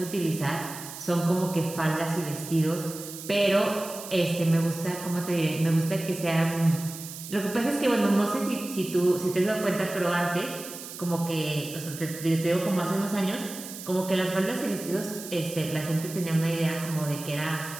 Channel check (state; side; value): noise; right; hiss, 12 dB below the sound